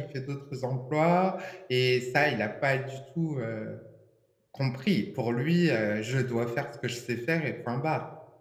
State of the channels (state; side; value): identical; both; correlation 1.00